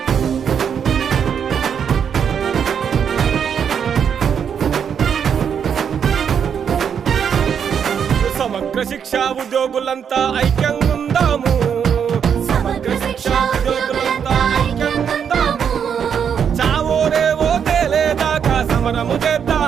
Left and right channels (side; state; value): left; quieter; 7.7 dB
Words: సమగ్ర శిక్షా ఉద్యోగులంతా ఐక్యంగా ఉందాము. సమగ్ర శిక్షా ఉద్యోగులంతా ఐక్యంగా ఉందాము. చావో రేవో తేలేదాకా సమరము